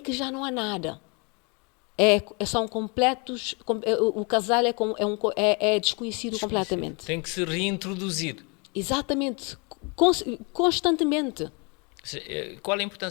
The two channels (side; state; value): right; quieter; 32.1 dB